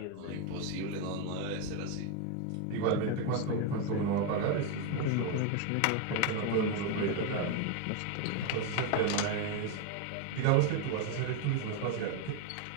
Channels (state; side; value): different; both; correlation 0.02